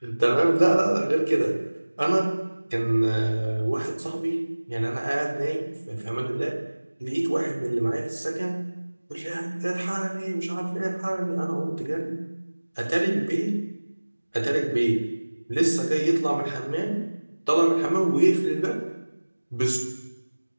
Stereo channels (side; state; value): both; inverted; correlation -1.00